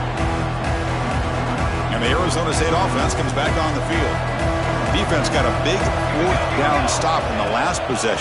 And the Arizona State offense comes back on the field. Defense got a big 4th down stop in the last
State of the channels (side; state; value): both; identical; correlation 1.00